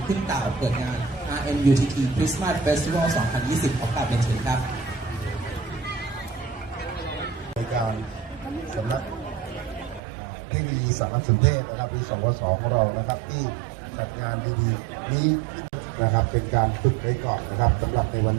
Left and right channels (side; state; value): left; drops out; at 10.0 s